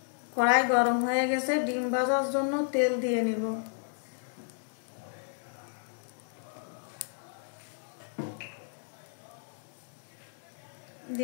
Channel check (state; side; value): silent; right; digital silence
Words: কড়াই গরম হয়ে গেছে, ডিম ভাজার জন্য তেল দিয়ে নিব।